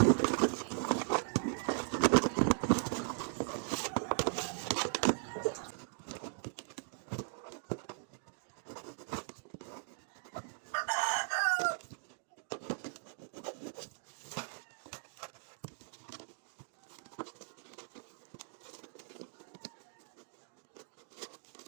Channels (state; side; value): silent; left; digital silence